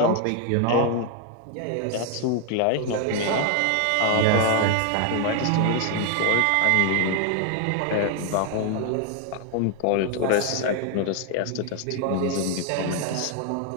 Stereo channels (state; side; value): different; both; correlation 0.00